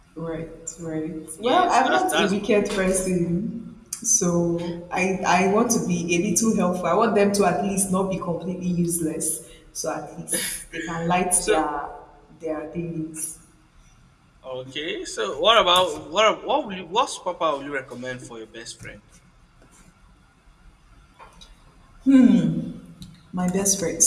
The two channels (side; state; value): both; identical; correlation 1.00